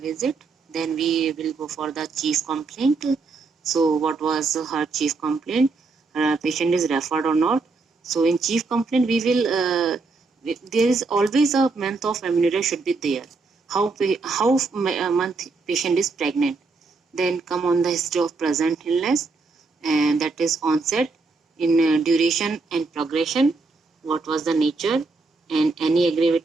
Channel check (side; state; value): left; quieter; 4.0 dB